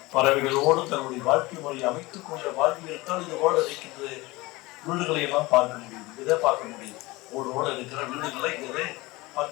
பறவைகளோடு தங்களுடைய வாழ்க்கை முறையை அமைத்துக் கொண்ட வாழ்வியல்தான் இது போல இருக்கின்ற வீடுகளை எல்லாம் பார்க்க முடியுது. இதை பார்க்க முடியுது. ஓடோடு இருக்கிற வீடுகளை இதை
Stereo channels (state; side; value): quieter; right; 21.7 dB